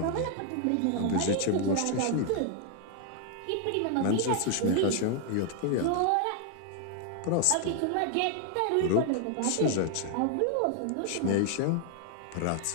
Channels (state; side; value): different; both; correlation 0.00